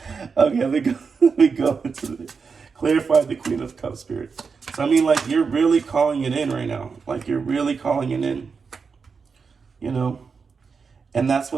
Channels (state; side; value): quieter; left; 5.3 dB